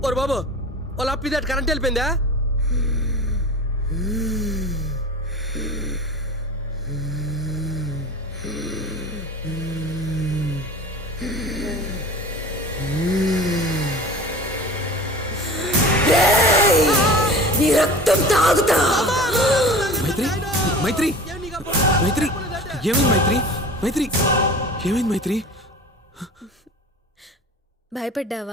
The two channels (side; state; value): both; normal; correlation 0.38